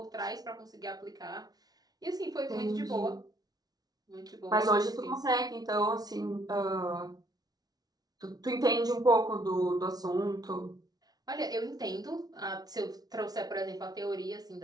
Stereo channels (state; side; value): late; left; 0.19 ms